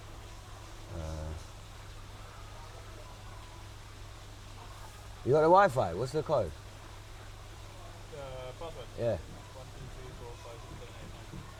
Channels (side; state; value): both; identical; correlation 1.00